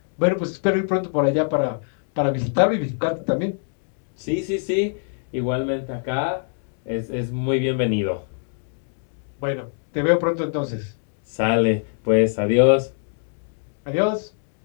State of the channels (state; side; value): silent; right; 63 dB below the other